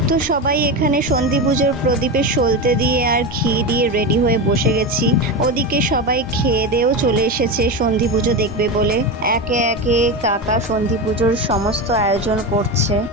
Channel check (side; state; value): both; normal; correlation 0.19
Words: তো সবাই এখানে সন্ধি পুজোর প্রদীপে সলতে দিয়ে আর ঘি দিয়ে রেডি হয়ে বসে গেছি। ওদিকে সবাই খেয়ে দেয়েও চলে এসেছে সন্ধি পুজো দেখবে বলে। একে একে কাকা সন্ধি পুজোর সমস্ত আয়োজন করছে।